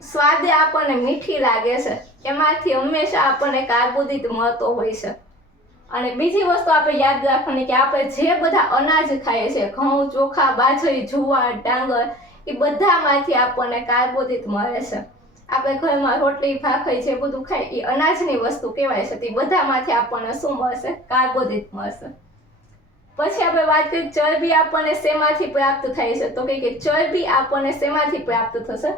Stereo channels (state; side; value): normal; both; correlation 0.43